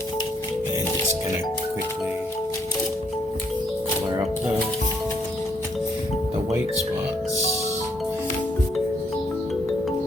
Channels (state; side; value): normal; both; correlation 0.70